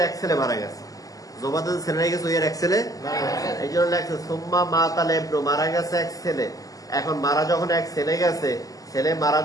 এক ছেলে মারা গেছে। জোবায়দা যে ছেলে রেখে গেছে, ওই আর এক ছেলে, এই জন্য লেখছে সুম্মা মাতাল এবনু, মারা গেছে এক ছেলে। এখন মারা যখন এক ছেলে গেছে, ছেলে মারা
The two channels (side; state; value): right; late; 0.17 ms